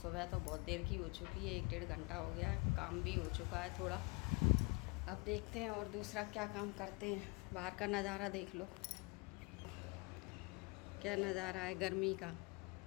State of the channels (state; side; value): quieter; right; 28.9 dB